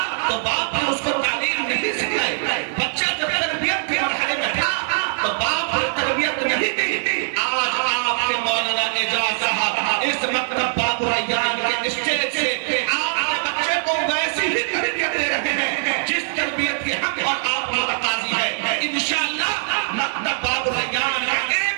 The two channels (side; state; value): left; silent; digital silence